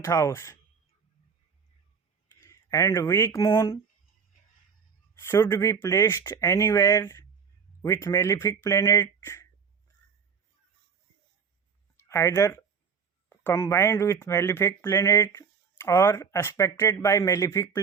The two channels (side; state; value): left; quieter; 6.2 dB